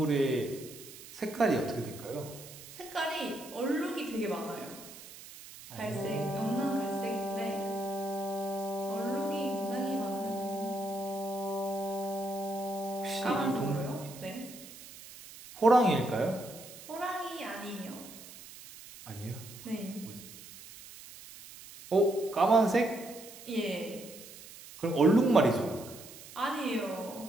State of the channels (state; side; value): noise; right; hiss, 16 dB below the sound